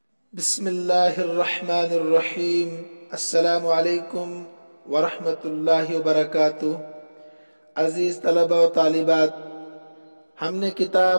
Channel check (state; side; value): inverted; both; correlation -1.00